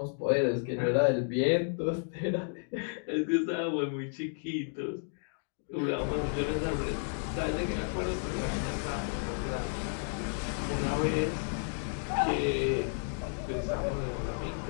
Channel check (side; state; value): right; silent; 56 dB below the other